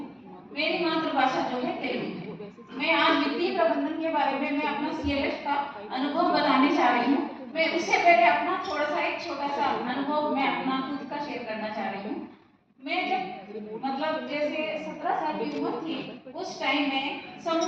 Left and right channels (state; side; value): identical; both; correlation 1.00